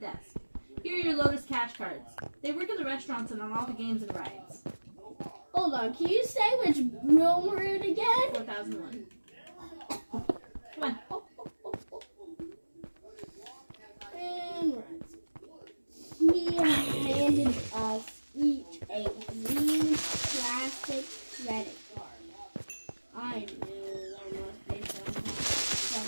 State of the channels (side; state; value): both; inverted; correlation -1.00